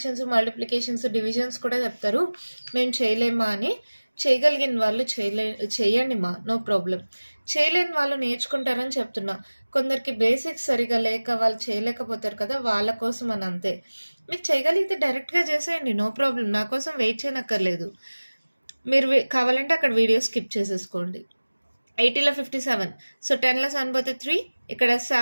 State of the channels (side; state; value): both; inverted; correlation -1.00